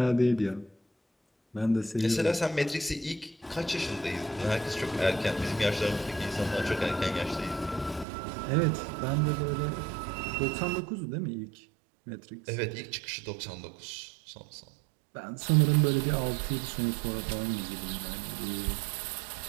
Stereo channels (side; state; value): left; drops out; at 8.1 s